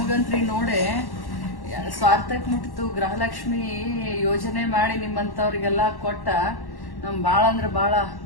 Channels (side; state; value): right; late; 1.1 ms